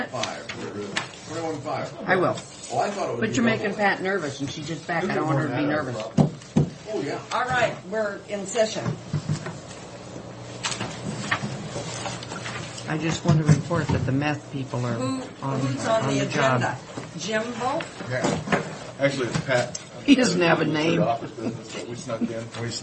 21.5. I will. Oh, I thought it was. But you're making Pat nervous, and she's just back. I don't want her to be nervous. Oh, yeah. All right, we're in session. I just want to report that the meth people are Who's on on the the job. agenda? Jimbo? Yeah. Actually, it's Pat. He doesn't have a name. Office business that we snuck in. We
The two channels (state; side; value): identical; both; correlation 1.00